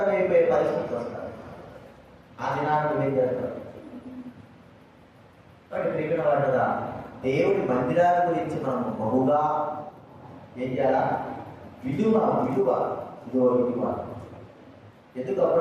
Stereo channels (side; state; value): both; identical; correlation 1.00